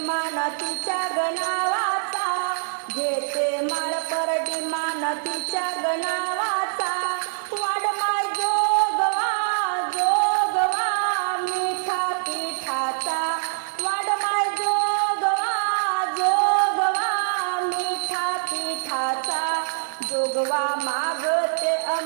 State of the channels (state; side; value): silent; left; digital silence